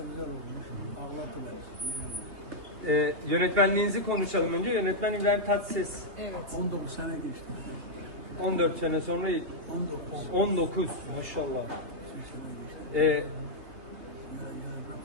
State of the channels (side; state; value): left; late; 3.3 ms